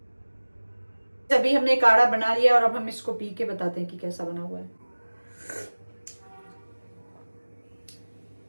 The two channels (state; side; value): inverted; both; correlation -1.00